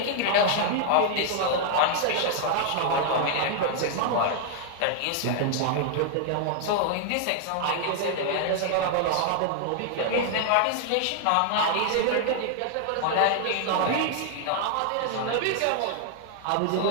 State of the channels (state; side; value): different; both; correlation 0.00